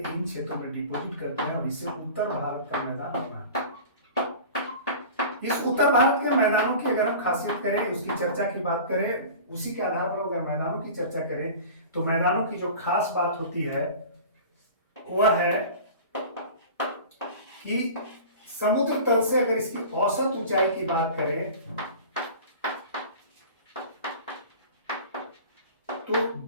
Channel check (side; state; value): both; inverted; correlation -0.38